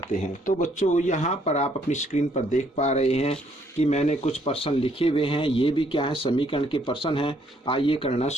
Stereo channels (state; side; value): normal; both; correlation 0.68